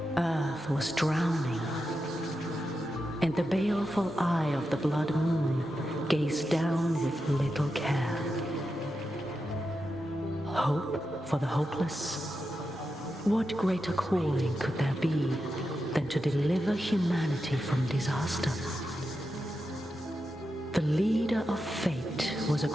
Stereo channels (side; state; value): both; normal; correlation 0.88